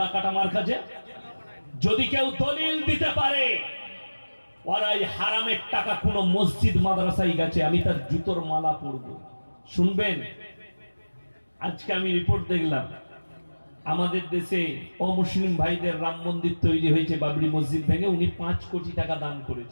মার্কাজে যদি কেউ দলিল দিতে পারে ওরাই হারামের টাকা কোন মসজিদ মাদ্রাসায় গেছে, আমি তার জুতোর মালা পরব। শুনবেন, আজকে আমি রিপোর্ট দেখলাম আমাদের দেশে অমুসলিম ভাইদের রাম মন্দির তৈরি হয়েছে, বাবরি মসজিদ ভেঙে উনি 5 কোটি টাকা দান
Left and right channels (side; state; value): both; inverted; correlation -1.00